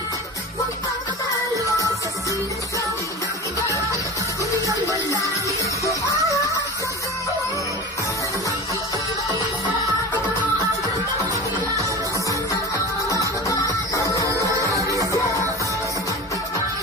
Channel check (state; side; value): normal; both; correlation 0.31